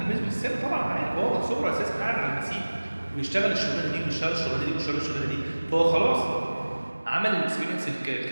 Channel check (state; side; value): inverted; both; correlation -1.00